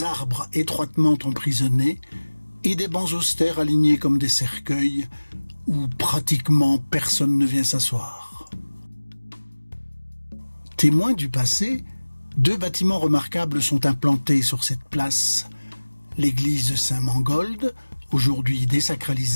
arbres étroitement emprisonnés et des bancs austères alignés comme des cercueils où pratiquement personne ne vient s'asseoir. Témoins du passé, 2 bâtiments remarquables sont implantés sur cette place. L'église Saint-Mangold, aujourd'hui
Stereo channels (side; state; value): both; inverted; correlation -1.00